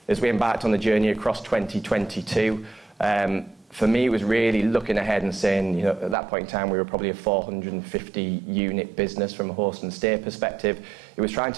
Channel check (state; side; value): drops out; left; at 6.2 s